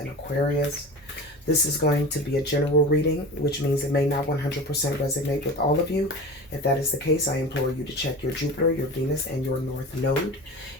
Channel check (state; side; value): normal; both; correlation 0.33